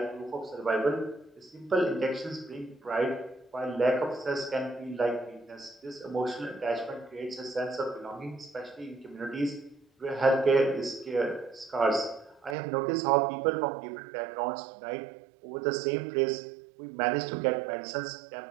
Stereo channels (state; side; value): drops out; left; at 12.6 s